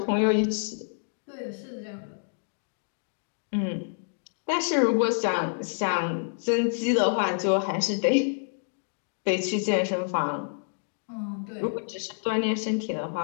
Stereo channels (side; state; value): right; silent; 59 dB below the other